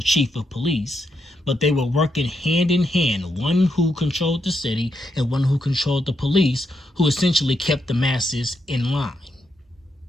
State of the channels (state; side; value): normal; both; correlation 0.81